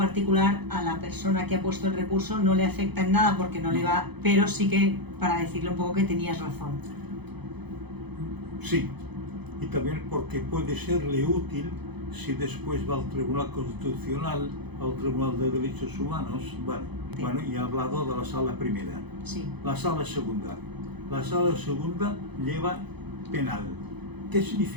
a la persona que ha puesto el recurso no le afecta en nada porque no le va, pero sí que para decirle un poco que tenías razón. Sí, y también porque puede serle útil si después va al Tribunal Constitucional, al Tribunal de Derechos Humanos. Bueno, y he hablado de la sala primera. Sí. La sala segunda. La sala segunda lleva penal. ¿Qué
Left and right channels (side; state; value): left; late; 0.98 ms